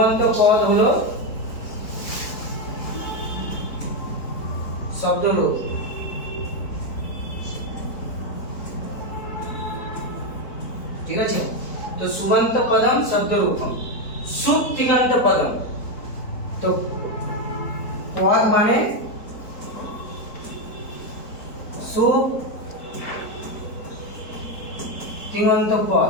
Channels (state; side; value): late; right; 4.1 ms